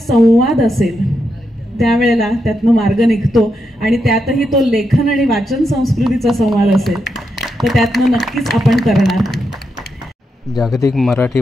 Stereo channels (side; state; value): both; normal; correlation 0.84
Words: असेल त्यावेळेला त्यातनं मार्ग निघतो, आणि त्यातही तो लेखन आणि वाचन संस्कृतीचा संवाद असेल तर त्यातनं नक्कीच आपण करणार. जागतिक मराठी